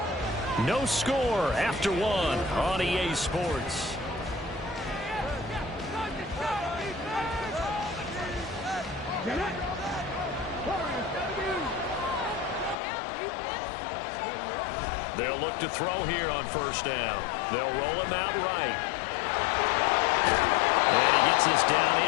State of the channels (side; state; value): right; drops out; at 12.8 s